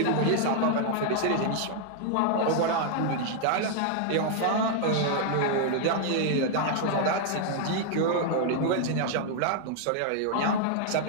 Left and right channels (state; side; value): different; both; correlation 0.00